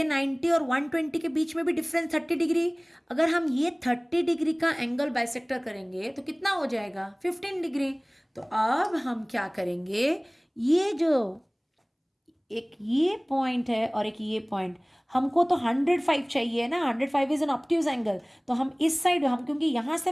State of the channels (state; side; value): identical; both; correlation 1.00